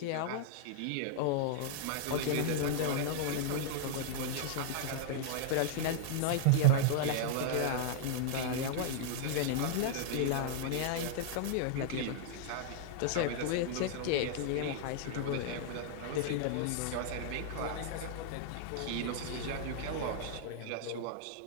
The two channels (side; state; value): both; different; correlation -0.01